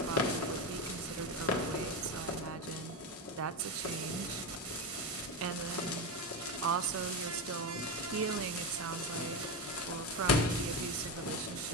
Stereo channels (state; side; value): normal; both; correlation 0.15